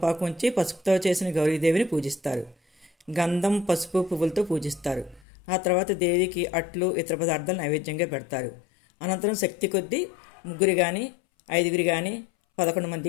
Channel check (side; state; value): right; drops out; at 5.2 s